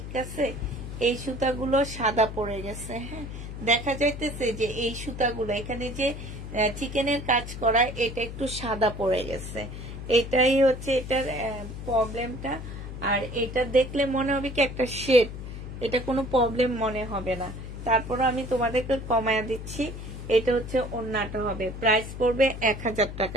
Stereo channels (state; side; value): noise; left; hum, 9 dB below the sound